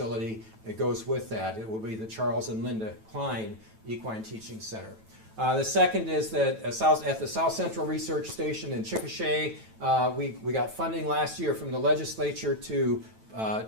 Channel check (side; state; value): left; late; 9.1 ms